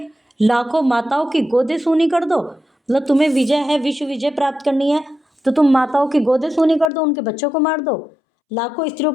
लाखों माताओं की गोदे सूनी कर दो। मतलब तुम्हें विजय है, विश्व विजय प्राप्त करनी है, तो तुम माताओं की गोदे सूनी कर दो, उनके बच्चों को मार दो, लाखों स्त्रियों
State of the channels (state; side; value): drops out; right; at 6.9 s